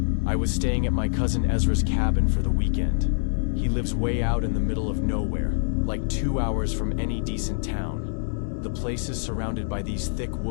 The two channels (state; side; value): silent; right; digital silence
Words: I was staying at my cousin 𝐬𝐵𝐺's cabin for the weekend. He lives way out in the middle of nowhere, like 2 hours from any decent town. The place is surrounded by these thick